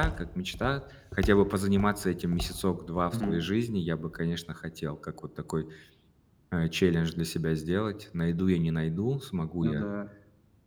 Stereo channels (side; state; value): both; identical; correlation 1.00